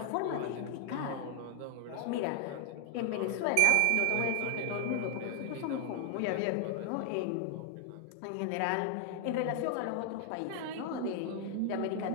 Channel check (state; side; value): different; both; correlation 0.00